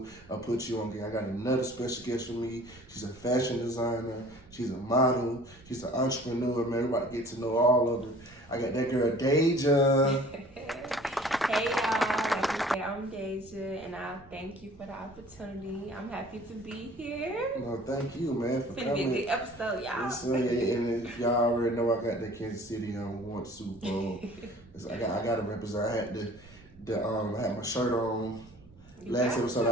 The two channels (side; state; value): right; noise; rumble, 25 dB below the sound